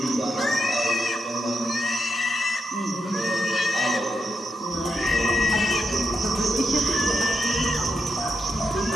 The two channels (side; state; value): both; normal; correlation 0.83